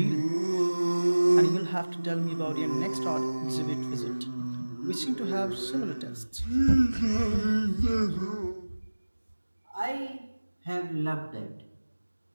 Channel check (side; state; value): both; inverted; correlation -1.00